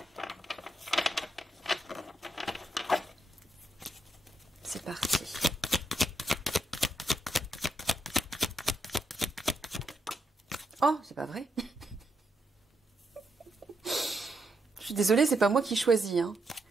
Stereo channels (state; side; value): normal; both; correlation 0.80